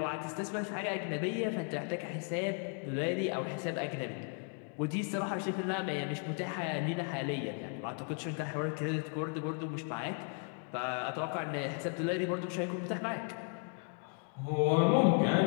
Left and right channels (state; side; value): quieter; right; 39.4 dB